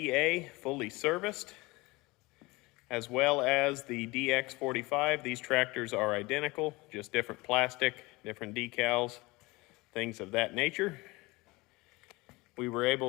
fully serviced, as well as the DX45. These tractors are identical, just different plastic, different decals, things of that nature. We were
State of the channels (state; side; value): quieter; right; 23.0 dB